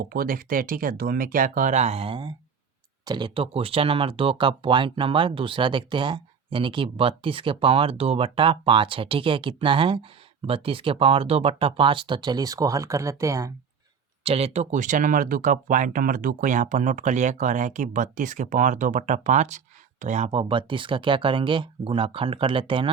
को देखते हैं। ठीक है, 2 में क्या कह रहा है। चलिए, तो क्वेश्चन नंबर 2 का पॉइंट नंबर दूसरा देखते हैं, यानी कि 32 के पावर 2/5 है। ठीक है, कितना है 32 के पावर 2/5। तो चलिए इसको हल कर लेते हैं। चलिए, तो क्वेश्चन नंबर 2 का पॉइंट नंबर 2 को यहाँ पर नोट कर लिया, कह रहा है कि 32 के पावर 2/5। तो यहाँ पर 32 का क्या करेंगे गुणाखंड कर लेते हैं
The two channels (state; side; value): quieter; left; 6.4 dB